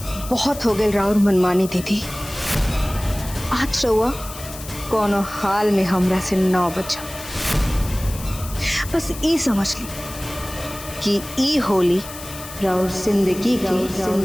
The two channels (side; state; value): left; noise; hiss, 13 dB below the sound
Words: बहुत हो गए राउर मनमानी दीदी। आज रउआ कोनो हाल में हमरा से ना बचा। बस ई समझ ली कि ई होली राउर जिंदगी